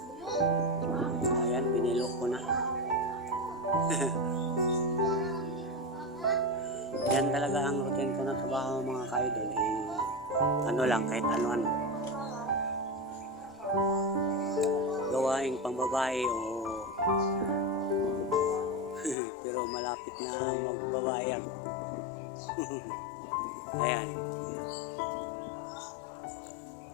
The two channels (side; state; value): right; drops out; at 19.2 s